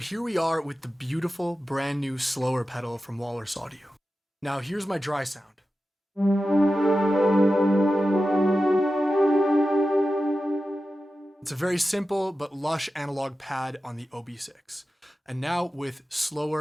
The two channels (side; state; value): both; normal; correlation 0.93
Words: we are with the beautiful brand new Slöer pedal from Walrus Audio. Now here's my dry sound. It's a very simple but lush analog pad on the OB6. And now with